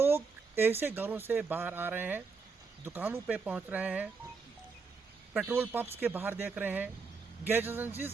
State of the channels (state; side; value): quieter; left; 4.9 dB